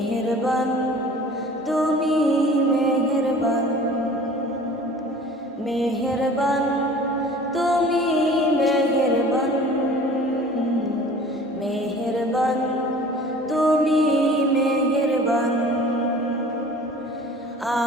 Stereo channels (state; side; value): normal; both; correlation 0.45